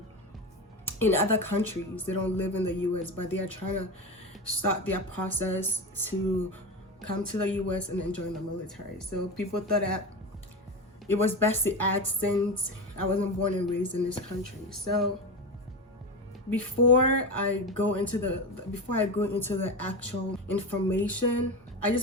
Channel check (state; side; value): normal; both; correlation 0.21